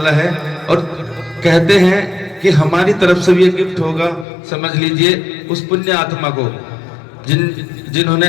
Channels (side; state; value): right; drops out; at 4.2 s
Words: है। और कहते हैं कि हमारी तरफ से भी एक गिफ्ट होगा, समझ लीजिए उस पुण्य आत्मा को जिन्होंने